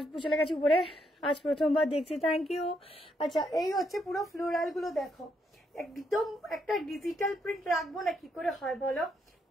চলে গেছি উপরে, আজ প্রথমবার দেখছি, থ্যাংক ইউ। আচ্ছা, এই হচ্ছে পুরো ফ্লোরাল গুলো দেখো, একদম একটা ডিজিটাল প্রিন্ট রাখবো না কি করে হয় বলো,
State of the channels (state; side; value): normal; both; correlation 0.76